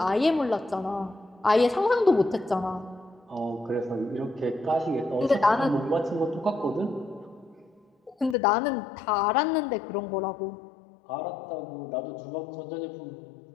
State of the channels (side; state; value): right; drops out; at 8.3 s